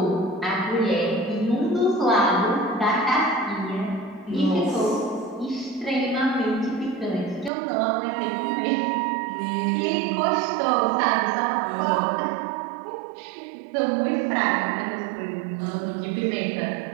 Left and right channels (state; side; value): drops out; left; at 7.5 s